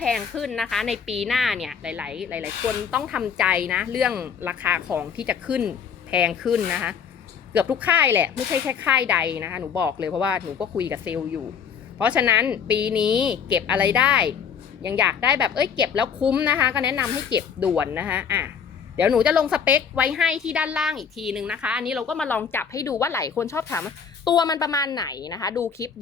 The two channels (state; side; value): quieter; right; 7.0 dB